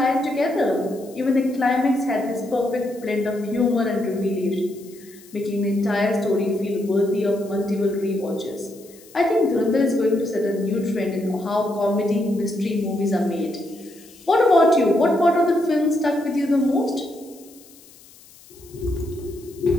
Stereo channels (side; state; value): left; noise; hiss, 24 dB below the sound